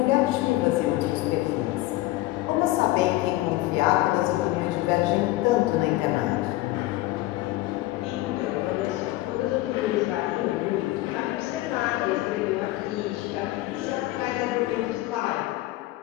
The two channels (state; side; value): quieter; right; 17.5 dB